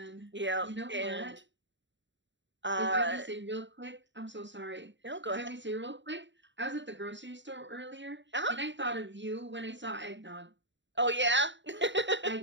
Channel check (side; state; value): left; late; 0.53 ms